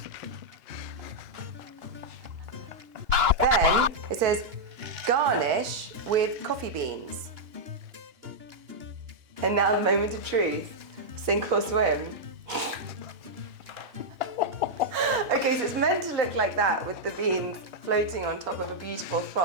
Then it says garnish with coffee beans. And now the moment of truth. Sink or swim. Okay, so it's meant to look like that with the beans floating on top of a beautiful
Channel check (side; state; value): left; late; 2.9 ms